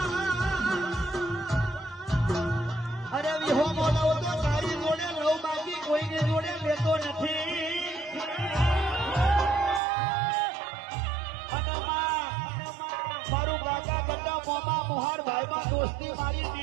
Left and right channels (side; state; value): left; drops out; at 9.8 s